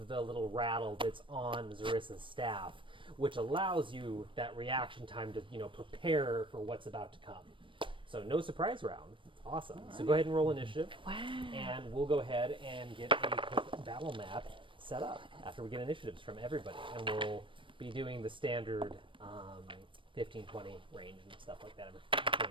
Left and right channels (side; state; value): left; late; 0.25 ms